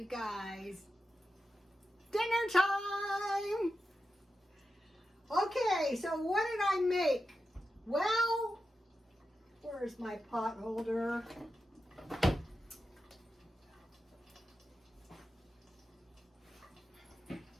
guys. Dinner time! Okay, so what did I make? Well, where's my pot holder?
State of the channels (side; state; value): both; normal; correlation 0.90